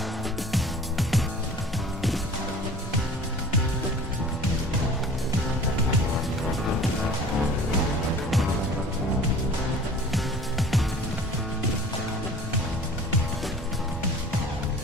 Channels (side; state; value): both; normal; correlation 0.44